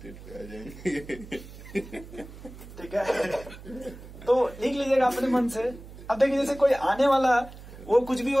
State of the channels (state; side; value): noise; right; hum, 16 dB below the sound